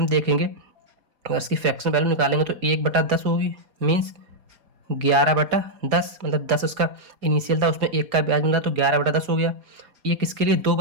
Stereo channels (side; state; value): left; late; 4.7 ms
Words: देखेंगे, अगर इसकी फ्रैक्शन वैल्यू निकालेंगे तो 1/10 होगी, मीन्स 11/10। मतलब 10 उसका इनिशियल था, उसमें 1 का ब्याज मिला तो 11/10 हो गया। ये किसके लिए, 2